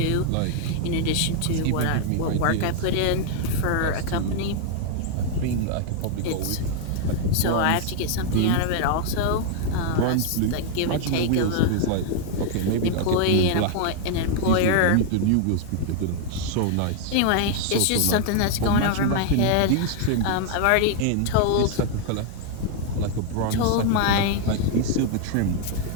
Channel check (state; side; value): different; both; correlation 0.00